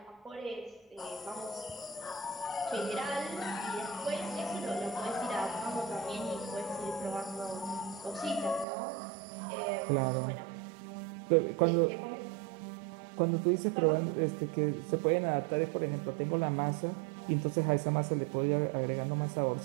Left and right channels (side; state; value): left; drops out; at 8.7 s